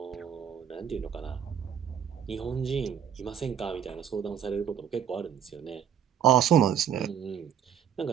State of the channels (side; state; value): left; quieter; 8.8 dB